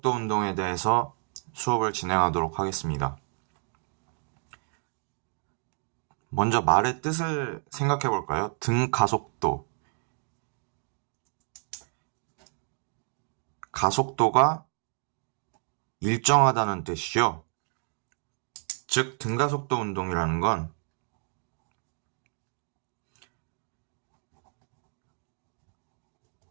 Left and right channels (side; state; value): left; silent; 57 dB below the other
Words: 운동에 대해서 수업을 진행하도록 하겠습니다. 먼저 말의 뜻을 생각해 볼까요? 등가속도. 가속도가 일정하다는 뜻이죠. 즉, 등가속도 운동이라는 건